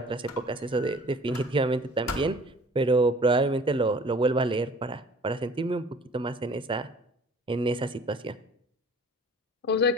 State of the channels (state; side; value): normal; both; correlation 0.49